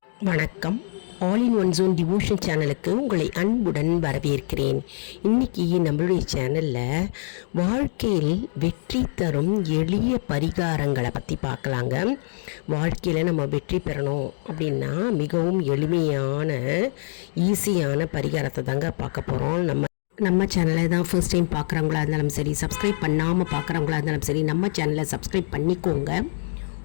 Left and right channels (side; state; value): right; silent; digital silence